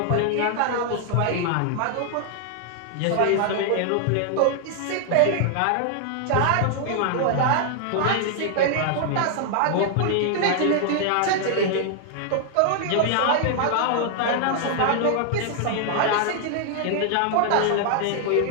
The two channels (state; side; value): different; both; correlation 0.00